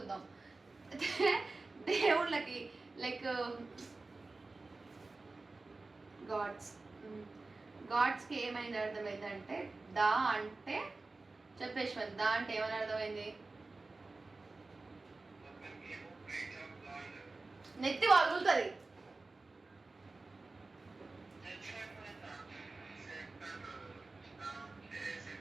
దేవుళ్ళకి లైక్ గాడ్స్కి ఏమైంది అర్థమైంది అంటే దా అంటే చెప్పేశ్వర్. దా అంటే ఏమని అర్థమైంది? నెత్తి వగులుతుంది.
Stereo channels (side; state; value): left; quieter; 3.5 dB